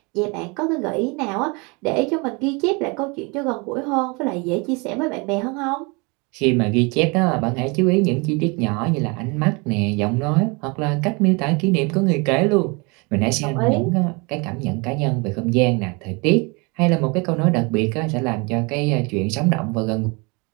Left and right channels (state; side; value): quieter; left; 29.4 dB